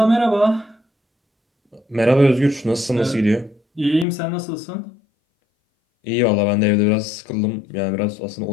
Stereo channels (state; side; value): drops out; right; at 4.0 s